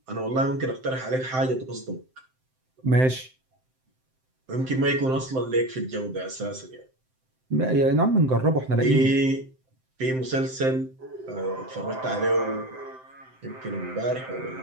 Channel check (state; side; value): late; left; 7.7 ms